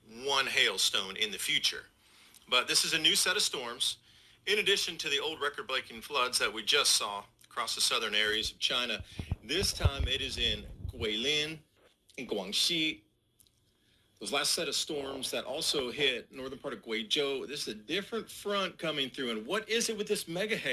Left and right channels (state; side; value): identical; both; correlation 1.00